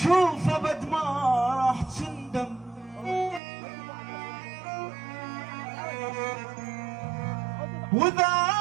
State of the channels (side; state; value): left; drops out; at 3.4 s